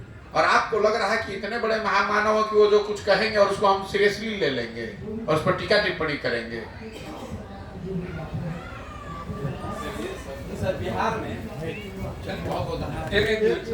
और आपको लग रहा है कि इतने बड़े महामानव कि वो जो कुछ कहेंगे और उसको हम सीरियसली ले लेंगे और उस पर टीका टिप्पणी करेंगे। सर, बिहार में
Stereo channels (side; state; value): both; identical; correlation 1.00